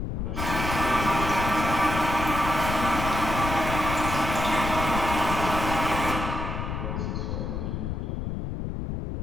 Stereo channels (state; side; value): noise; left; rumble, 4 dB below the sound